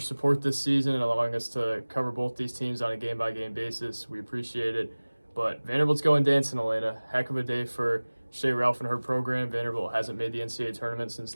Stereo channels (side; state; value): both; inverted; correlation -1.00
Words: this season and allowing us to cover both these teams on a game-by-game basis. We appreciate it. But Vanderbilt's going dancing, Elena. Heck of a day for Shea Ralph and her program. Vanderbilt hasn't made the NCAA tournament since